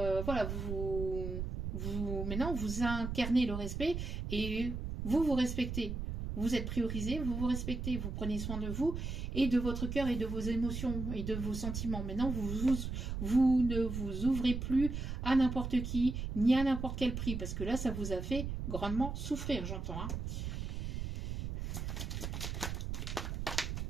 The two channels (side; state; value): right; noise; rumble, 4 dB below the sound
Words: voilà, maintenant, vous incarnez le respect et vous respectez. Vous êtes priorisé, vous vous respectez, vous prenez soin de vous et de votre cœur et de vos émotions et de vos sentiments. Maintenant, vous ne vous ouvrez plus à n'importe qui, ni à n'importe quel prix, parce que là, ça vous a fait grandement souffrir, j'entends. Hein.